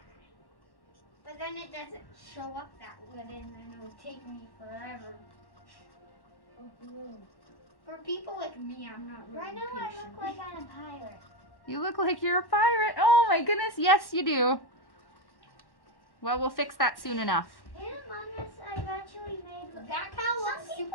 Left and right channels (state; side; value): late; right; 1.1 ms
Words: But then it doesn't show up that good, and then it'll take me forever. For people like me, I'm not really Right now I patient. look like I'm a pirate. You look like you're a pirate. Oh my goodness, yes you do. Well, we'll fix that soon enough. In AmongUs, I've actually made. That kind of looks Some super